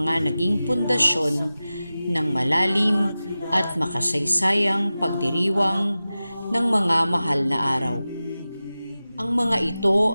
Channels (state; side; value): inverted; both; correlation -0.95